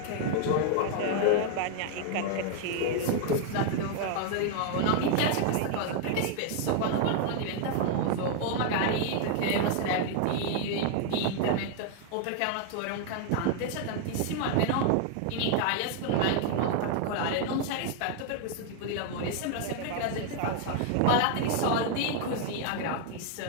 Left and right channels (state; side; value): different; both; correlation 0.00